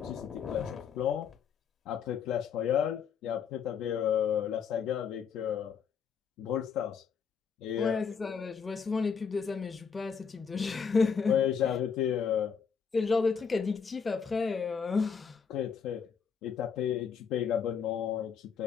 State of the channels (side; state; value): right; quieter; 6.5 dB